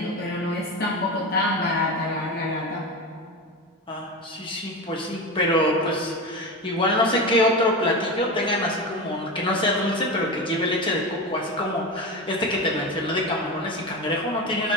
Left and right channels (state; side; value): normal; both; correlation 0.22